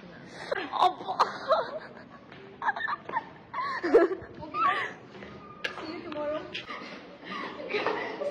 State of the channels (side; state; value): both; identical; correlation 1.00